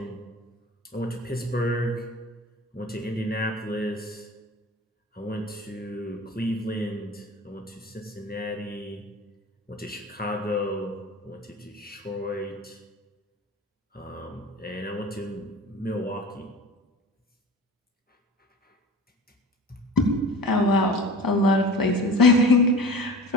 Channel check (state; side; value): normal; both; correlation 0.37